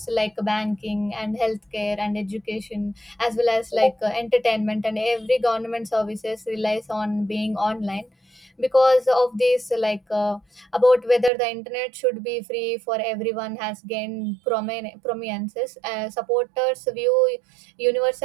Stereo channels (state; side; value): drops out; left; at 11.3 s